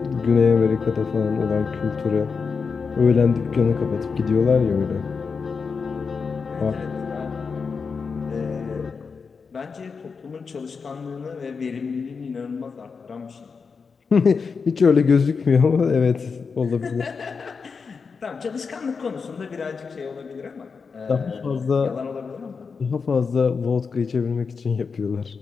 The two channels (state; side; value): quieter; right; 5.3 dB